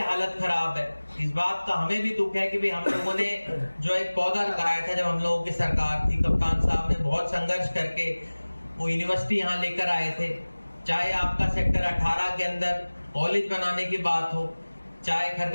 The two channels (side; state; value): both; inverted; correlation -1.00